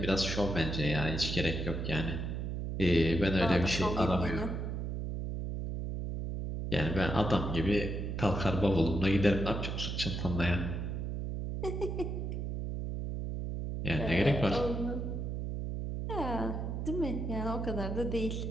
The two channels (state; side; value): noise; right; hum, 3 dB below the sound